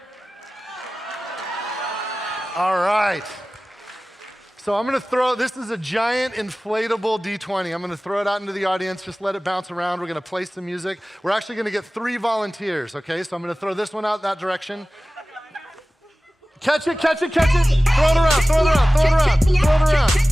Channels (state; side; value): normal; both; correlation 0.97